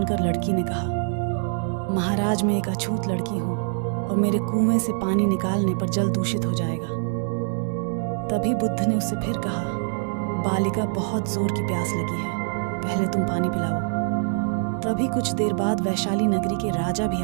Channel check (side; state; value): left; silent; 62 dB below the other